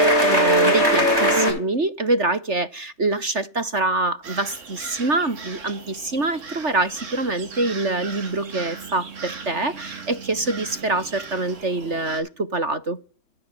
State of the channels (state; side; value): late; left; 3.4 ms